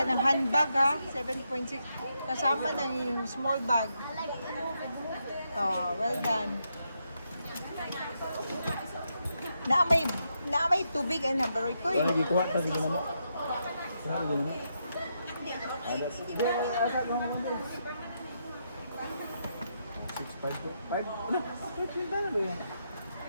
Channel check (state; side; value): inverted; both; correlation -0.81